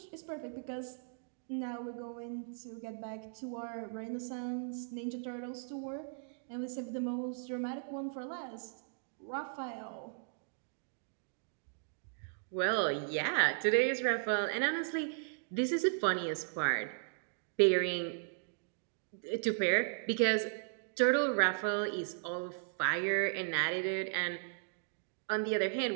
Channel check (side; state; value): left; silent; digital silence